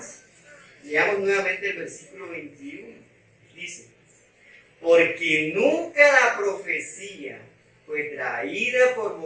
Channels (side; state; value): both; identical; correlation 1.00